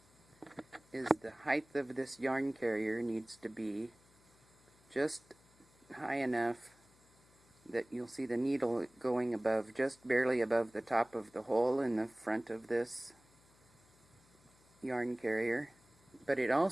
is the height of this yarn carrier needs to be just high enough that you'll see the needle going above, just barely above the top of the hole in the front of this yarn carrier. But it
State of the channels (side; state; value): left; noise; hum, 30 dB below the sound